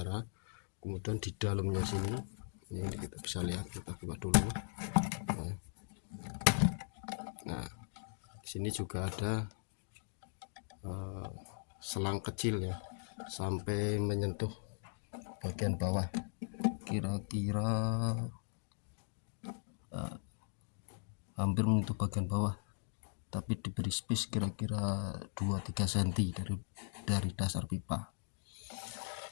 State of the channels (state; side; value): silent; right; digital silence